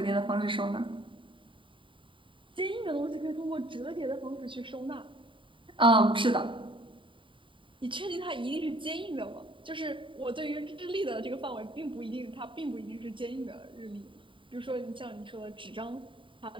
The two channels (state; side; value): late; left; 0.25 ms